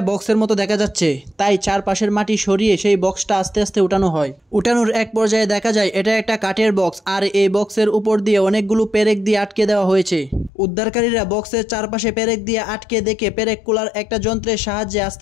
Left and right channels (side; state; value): right; drops out; at 10.5 s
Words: বক্সের মতো দেখা যাচ্ছে, তাই চারপাশের মাটি সরিয়ে সেই বক্সটা আস্তে আস্তে উঠানো হয়। উঠানোর এক পর্যায়ে দেখা যায় এটা একটা কাঠের বক্স, আর এই বক্সের উপর দিয়ে অনেকগুলো পেরেক দিয়ে আটকে দেওয়া হয়েছে। উদ্ধারকারীরা বক্সের চারপাশে পেরেক দিয়ে আটকে দেখে পেরেক কুলার একটা যন্ত্রের সাহায্যে